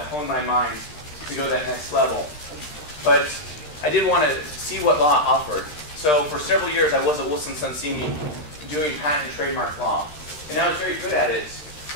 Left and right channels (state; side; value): late; right; 13 ms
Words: my mind to go to that next level. But I did want to see what law offered. So for several years I was at Wilson Sonsini doing patent and trademark law. And I was very good at it,